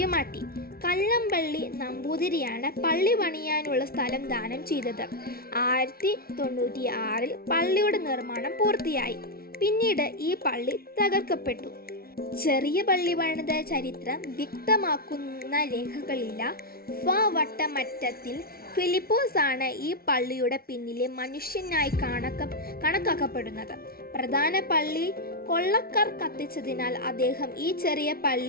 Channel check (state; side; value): late; right; 0.44 ms